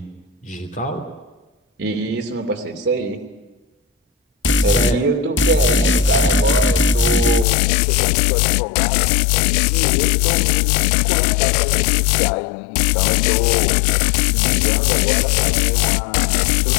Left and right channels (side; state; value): right; drops out; at 7.5 s